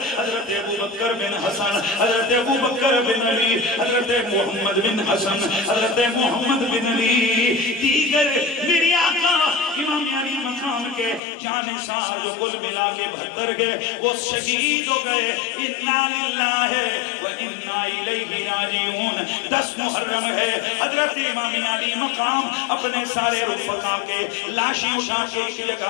حضرت ابوبکر بن حسن، حضرت ابوبکر بن علی، حضرت محمد بن حسن، حضرت محمد بن علی، دیگر میری آقا امام علی مقام کے جانثار جو کل ملا کے 72 گئے وہ شہید ہو گئے۔ انا للہ و انا الیہ راجعون۔ 10 محرم ہے، حضرت امام علی مقام اپنے سارے رفقا کے لاشیں اٹھا کے ایک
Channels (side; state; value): right; drops out; at 11.2 s